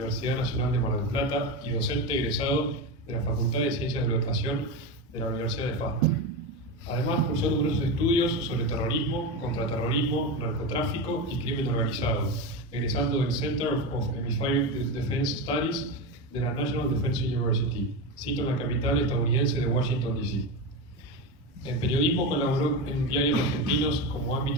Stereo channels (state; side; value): normal; both; correlation 0.18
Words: Nacional de Mar del Plata y docente egresado de la Facultad de Ciencias de la Educación de la Universidad de FAS. Además, cursó numerosos estudios sobre terrorismo, contraterrorismo, narcotráfico y crimen organizado, egresando del Center of Hemispheric Defense Studies de la National Defense University, sito en la capital estadounidense de Washington, D.C. En periodismo colaboró en diarios argentinos como